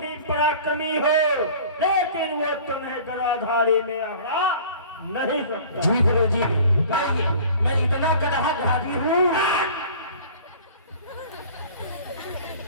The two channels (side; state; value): both; inverted; correlation -0.44